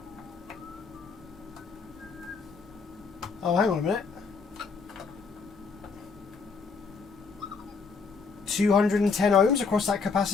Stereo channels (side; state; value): right; quieter; 4.9 dB